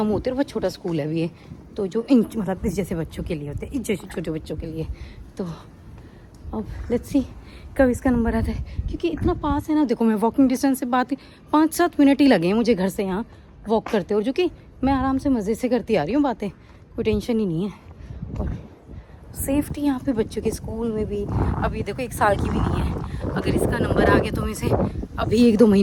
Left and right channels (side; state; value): both; identical; correlation 1.00